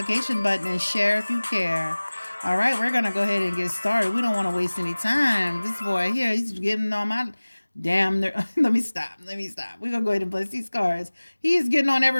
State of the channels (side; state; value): both; inverted; correlation -1.00